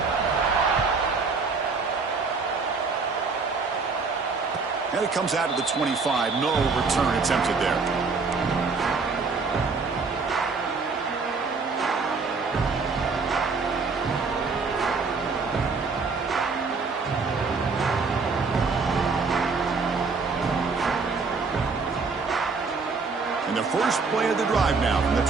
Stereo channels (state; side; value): quieter; left; 4.5 dB